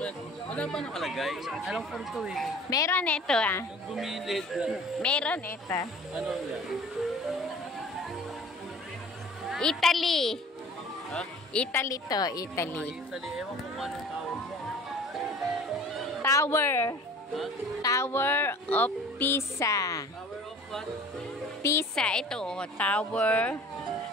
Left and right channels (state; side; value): normal; both; correlation 0.46